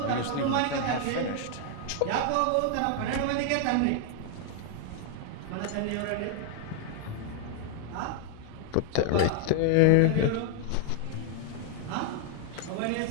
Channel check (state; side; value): different; both; correlation 0.00